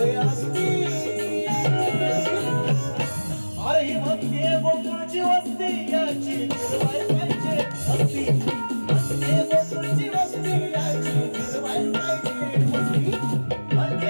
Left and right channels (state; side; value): inverted; both; correlation -1.00